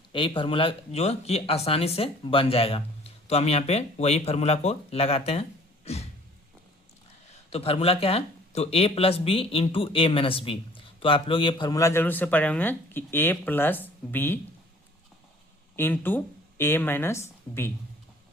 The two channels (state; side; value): normal; both; correlation 0.54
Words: यही फार्मूला जो कि आसानी से बन जाएगा, तो हम यहाँ पे वही फार्मूला को लगाते हैं। तो फार्मूला क्या है, तो A+B × A-B, तो आप लोग ये फार्मूला जरूर से पढ़े होंगे कि A+B × A-B,